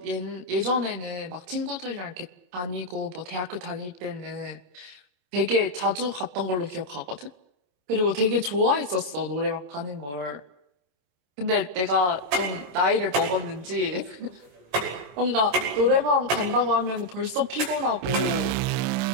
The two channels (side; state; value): left; late; 27 ms